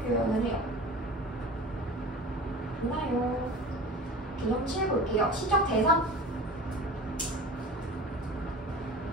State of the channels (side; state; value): both; normal; correlation 0.37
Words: 해요. 맞나요? 개념 7 볼게요. 시적 대상.